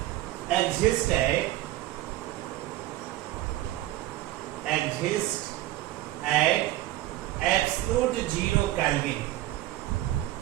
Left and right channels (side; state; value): left; quieter; 15.7 dB